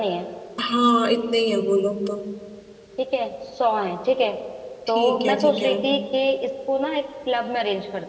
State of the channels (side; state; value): both; identical; correlation 1.00